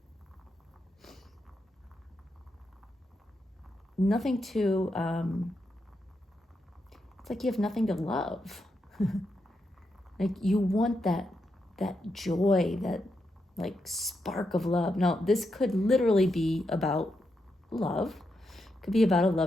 Nothing to, it's like you have nothing to love. You want that joy, that spark of love. Now, this could literally be about love. It could be about a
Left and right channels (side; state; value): both; normal; correlation 0.84